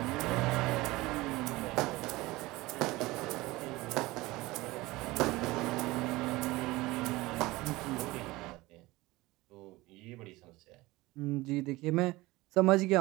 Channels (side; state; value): left; quieter; 20.3 dB